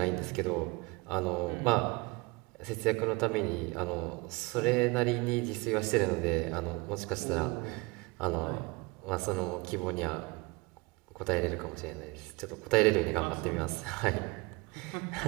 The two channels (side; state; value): left; quieter; 26.0 dB